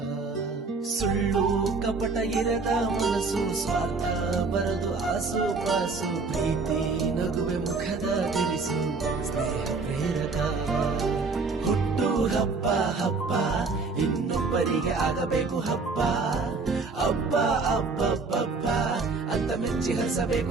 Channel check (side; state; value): left; quieter; 4.1 dB